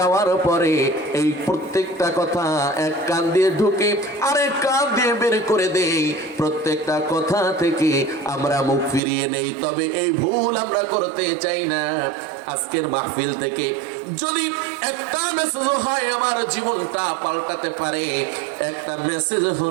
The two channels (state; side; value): drops out; left; at 9.0 s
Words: পরে এই প্রত্যেকটা কথা এক কান দিয়ে ঢুকে আরেক কান দিয়ে বের করে দেই। প্রত্যেকটা কথা থেকে আমরা মুখ ফিরিয়ে নেই। তবে এই ভুল আমরা করতে চাই না। আজকের মাহফিল থেকে যদি একটা মেসেজ হয় আমার জীবনটা পাল্টাতে পারে, একটা মেসেজ